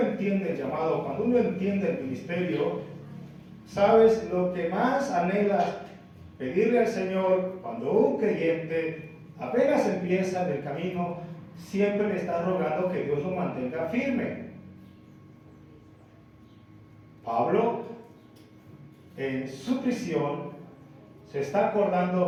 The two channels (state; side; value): identical; both; correlation 1.00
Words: el llamado, cuando uno entiende el ministerio, ¿sabes lo que más anhelas? Pedirle al Señor, cuando un creyente apenas empieza en el camino, siempre le está rogando que Dios lo mantenga firme. Pablo, en su prisión, se está